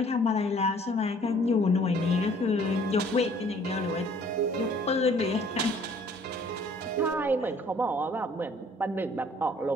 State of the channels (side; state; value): both; normal; correlation 0.57